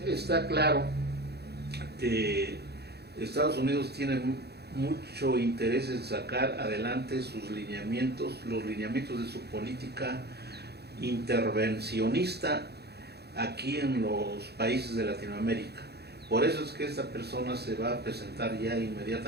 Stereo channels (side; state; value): left; late; 0.48 ms